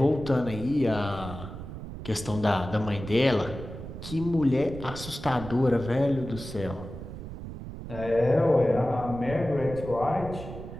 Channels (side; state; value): right; noise; rumble, 10 dB below the sound